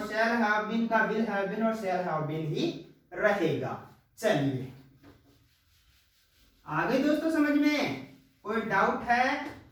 शैल हैव बीन का विल हैव बीन और शैल हैव बीन ही रहेगा। चलिए आगे दोस्तों समझ में कोई डाउट है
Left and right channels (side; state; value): both; identical; correlation 1.00